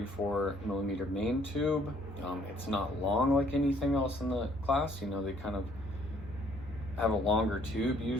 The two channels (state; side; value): normal; both; correlation 0.62